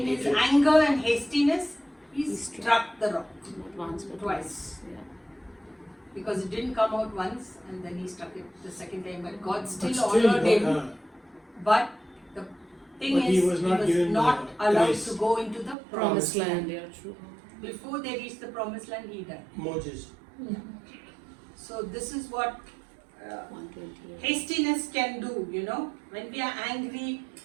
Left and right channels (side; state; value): left; drops out; at 15.8 s